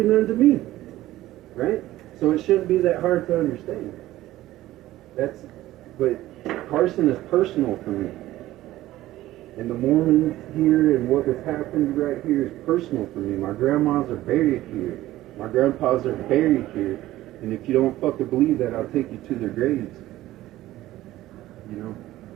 nothing to me. Right? So it shouldn't be that hard to understand. But Carson is personal for me. And the Mormons here and what has happened right here is personal for me. My grandmas are buried here. My grandpas are buried here. And if you don't fucking believe that, I'll take you to their graves. You know?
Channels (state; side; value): quieter; left; 15.5 dB